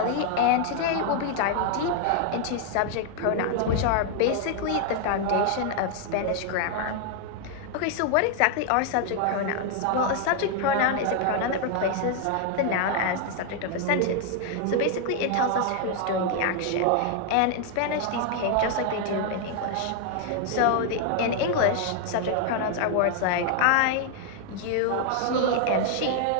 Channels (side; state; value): both; different; correlation 0.00